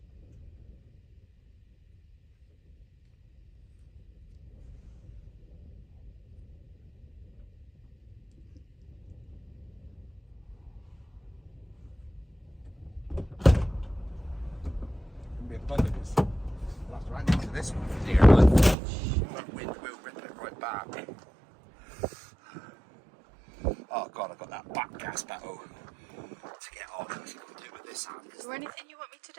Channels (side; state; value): left; drops out; at 18.8 s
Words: We'll have to hang into this one for dear life. That wind will rip it right back. Oh God, I've got that back gas battle to get on. I've got to do it with this hand. Is there anything you want me to